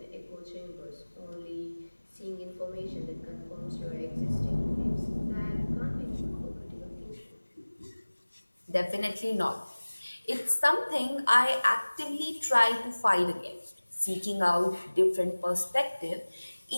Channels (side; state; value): both; inverted; correlation -1.00